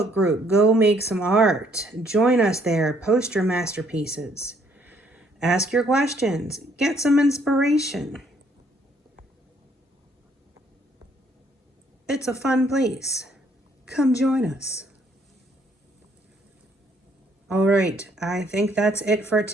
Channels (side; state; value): both; normal; correlation 0.66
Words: group, Go Make Some Art. Join us there, post your masterpieces, ask your questions, get some inspiration. It's a fun place. Come join us. All right, I think that's it for